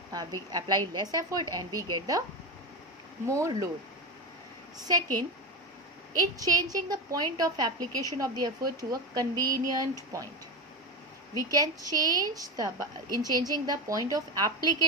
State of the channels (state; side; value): normal; both; correlation 0.19